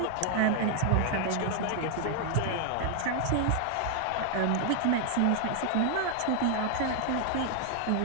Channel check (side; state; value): both; different; correlation 0.00